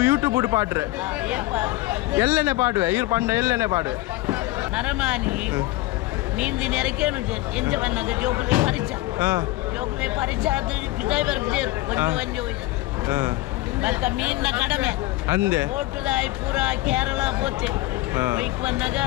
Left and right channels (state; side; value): quieter; right; 18.3 dB